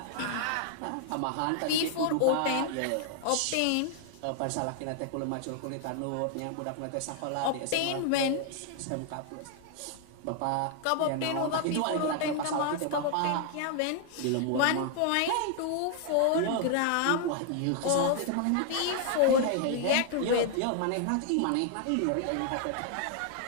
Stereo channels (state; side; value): different; both; correlation 0.00